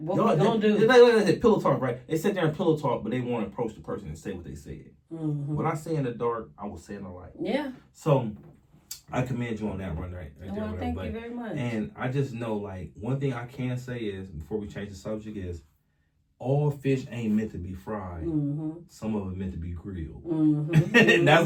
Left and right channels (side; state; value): both; identical; correlation 1.00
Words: y'all, we gonna do? They pillow talk, right? They sit there and pillow talk, but they want to approach the person and say what they said. What I say in the dark, I will say in the light. Yeah. So I commend you on that one, right? Well, thank you very much. And I just know, like, one thing I can say is, before we change the subject, is all fish ain't meant to be fried. Some of it meant to be grilled. And that's